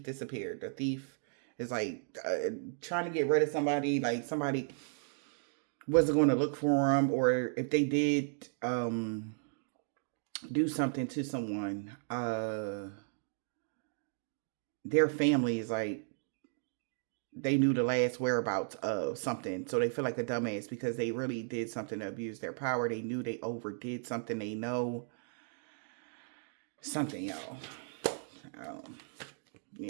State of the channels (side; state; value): left; silent; digital silence